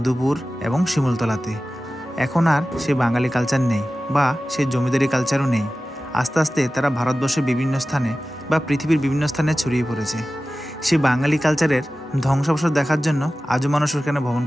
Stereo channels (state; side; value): normal; both; correlation 0.95